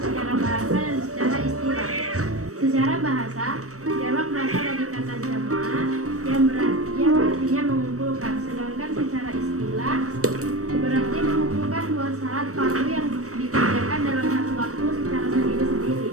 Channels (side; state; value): left; late; 0.65 ms